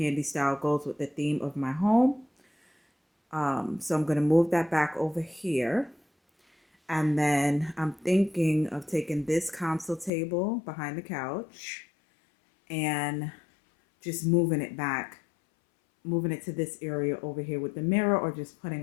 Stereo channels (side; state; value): right; drops out; at 10.1 s